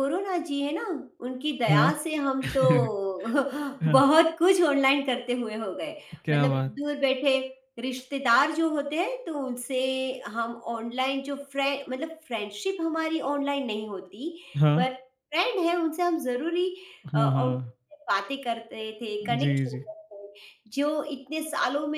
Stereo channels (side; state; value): both; identical; correlation 1.00